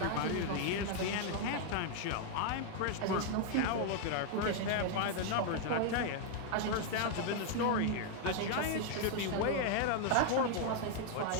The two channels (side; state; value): both; different; correlation 0.00